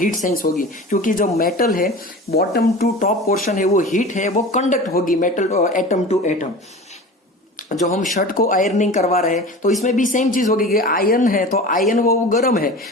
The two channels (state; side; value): normal; both; correlation 0.36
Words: सेंस होगी, क्योंकि जो मेटल है बॉटम टू टॉप पोर्शन है वो हीट है, वो कंडक्ट होगी मेटल एटम टू एटम। जो हम शर्ट को आयरनिंग करवा रहे हैं तो इसमें भी सेम चीज होगी कि आयरन है तो आयरन वो गर्म है।